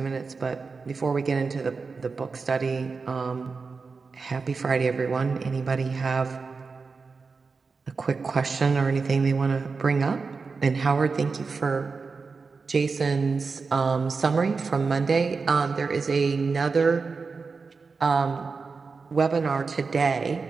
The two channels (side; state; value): left; quieter; 4.6 dB